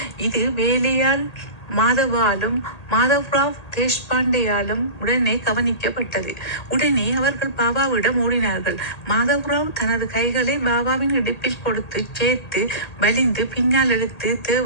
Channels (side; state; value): right; late; 1.8 ms